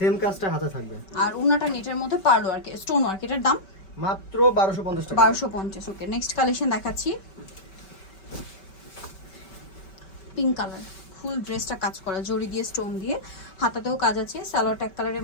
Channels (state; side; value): late; right; 5.2 ms